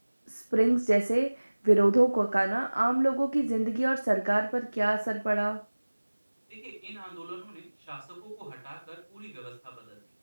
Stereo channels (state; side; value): inverted; both; correlation -1.00